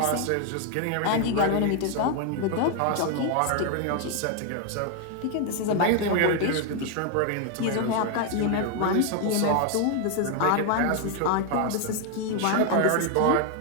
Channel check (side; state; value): both; different; correlation 0.01